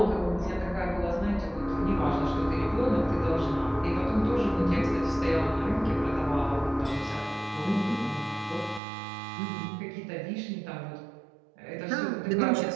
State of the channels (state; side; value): drops out; left; at 8.8 s